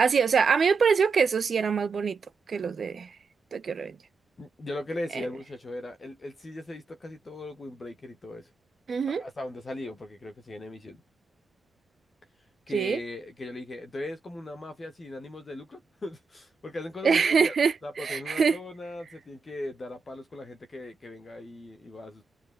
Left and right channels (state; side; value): quieter; left; 4.8 dB